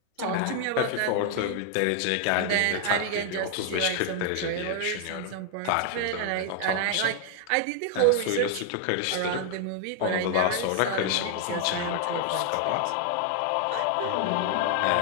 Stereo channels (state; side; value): different; both; correlation 0.00